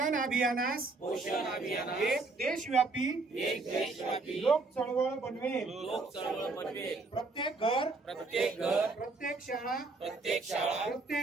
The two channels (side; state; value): left; quieter; 3.7 dB